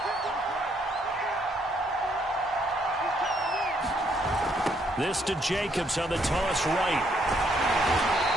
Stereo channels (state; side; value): normal; both; correlation 0.71